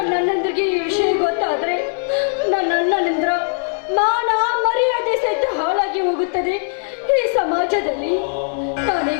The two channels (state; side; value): silent; right; digital silence